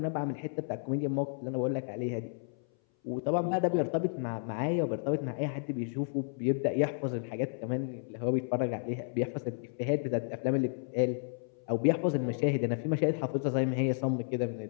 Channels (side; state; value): right; silent; 56 dB below the other